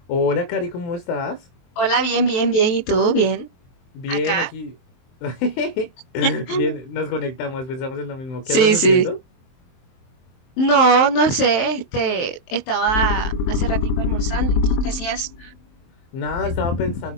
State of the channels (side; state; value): right; late; 23 ms